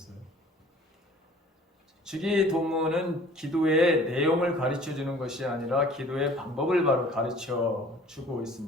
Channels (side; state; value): both; normal; correlation 0.50